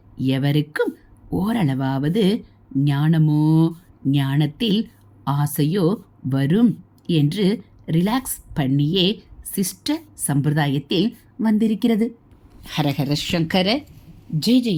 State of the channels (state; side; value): identical; both; correlation 1.00